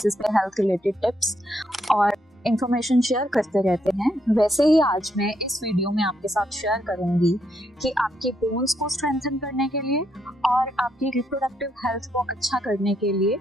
पे health related tips और information share करते रहते हैं। वैसे ही आज मैं इस वीडियो में आपके साथ शेयर करूंगी कि आपके बोन्स को स्ट्रेंथन करने के लिए और आपकी रिप्रोडक्टिव हेल्थ को अच्छा करने के लिए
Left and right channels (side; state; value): both; normal; correlation 0.77